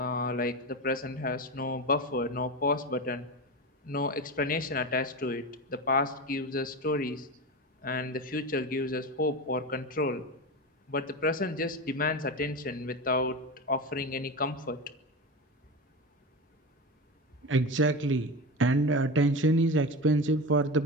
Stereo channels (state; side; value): normal; both; correlation 0.23